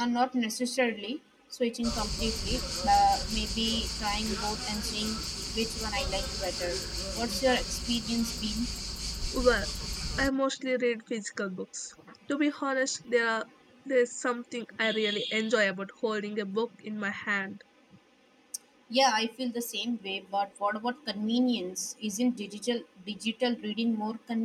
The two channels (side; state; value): both; identical; correlation 1.00